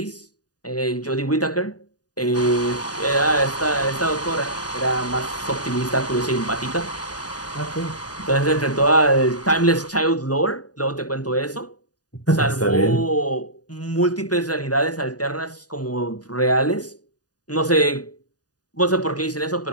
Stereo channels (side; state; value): right; late; 0.68 ms